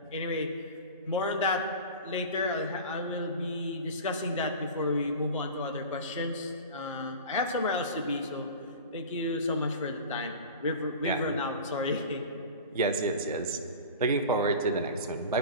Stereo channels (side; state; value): both; inverted; correlation -0.34